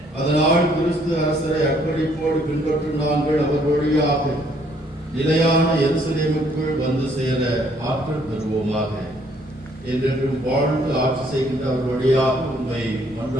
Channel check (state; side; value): normal; both; correlation 0.65